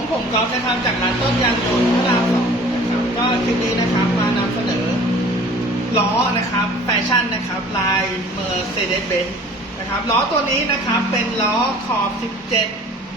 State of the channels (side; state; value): both; normal; correlation 0.48